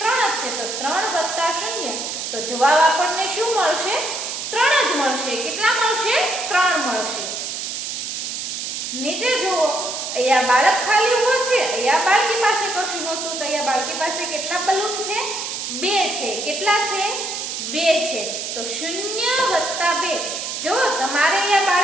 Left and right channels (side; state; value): right; noise; hiss, 5 dB below the sound